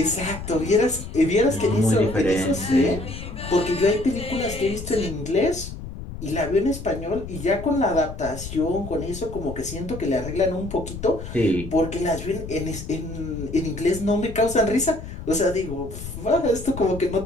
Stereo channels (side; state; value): left; noise; rumble, 10 dB below the sound